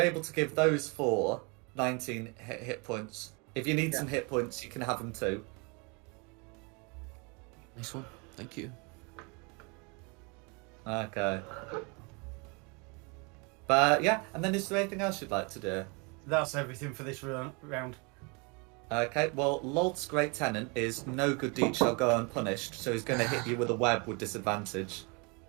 able to give those 4 19 hit points. If you need Yeah. some hit points, you can have them too. Nice one. Thank you. Okay. But yeah, and then is there anything else you'd like to do? That's everything for this round. Okay, well, Lolt's Great Tenant is no good deed shall go unpunished, so he's going to hit you with a web with disadvantage.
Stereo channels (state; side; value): quieter; left; 31.4 dB